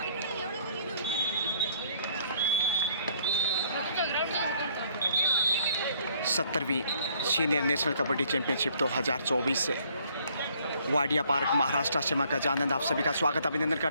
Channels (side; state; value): both; inverted; correlation -0.63